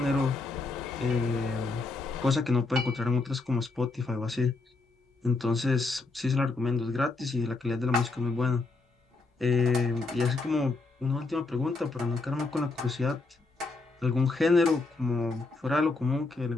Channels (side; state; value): right; quieter; 3.6 dB